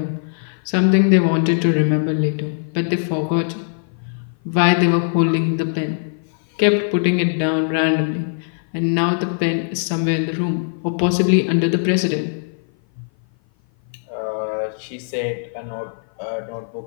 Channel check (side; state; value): right; silent; 56 dB below the other